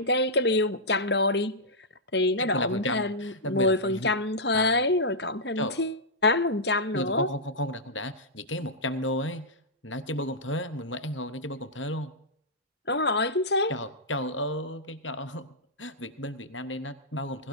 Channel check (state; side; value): normal; both; correlation -0.10